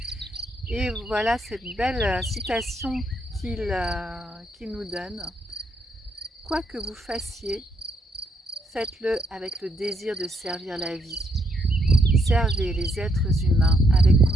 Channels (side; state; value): both; normal; correlation 0.75